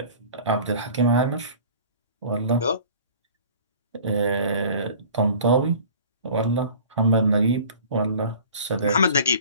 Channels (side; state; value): both; inverted; correlation -0.45